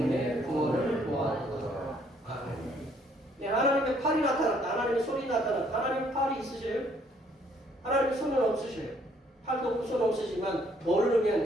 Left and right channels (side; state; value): both; normal; correlation 0.65